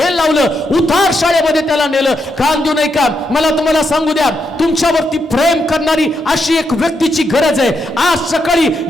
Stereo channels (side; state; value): both; normal; correlation 0.81